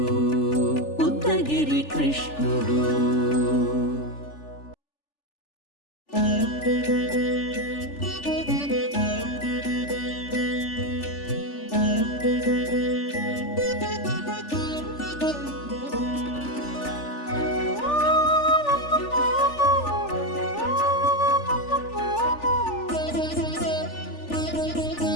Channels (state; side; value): late; right; 3.4 ms